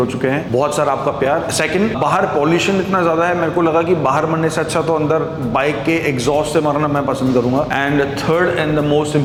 चुके हैं। बहुत सारा आपका प्यार। सेकंड, बाहर पॉल्यूशन इतना ज्यादा है, मेरे को लगा कि बाहर मरने से अच्छा तो अंदर बाइक के एग्जॉस्ट से मरना मैं पसंद करूंगा। And third and the most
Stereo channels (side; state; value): both; identical; correlation 1.00